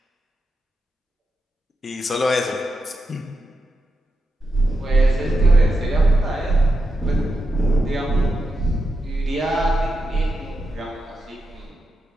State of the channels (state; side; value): normal; both; correlation 0.87